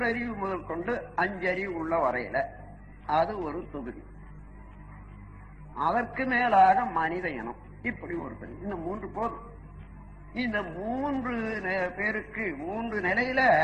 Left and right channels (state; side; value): identical; both; correlation 1.00